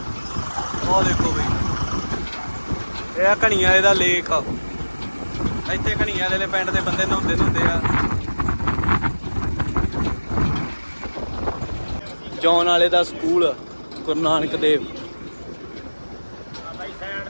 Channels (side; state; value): both; inverted; correlation -1.00